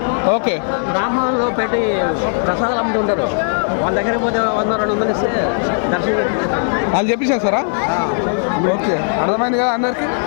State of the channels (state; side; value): silent; right; digital silence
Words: ఓకే. బ్రాహ్మణులు పెట్టి ప్రసాదాలు అమ్ముతుంటారు. వాళ్ళ దగ్గర పోతే 100-200 ఇస్తే దర్శనం వాళ్ళు చెప్పేసేస్తారా? ఓకే, అర్థమైంది కదా అందరికి.